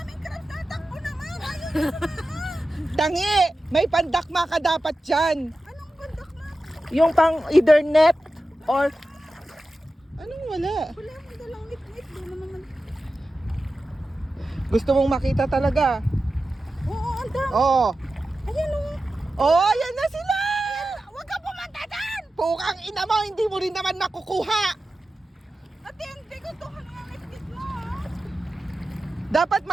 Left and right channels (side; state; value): both; normal; correlation 0.93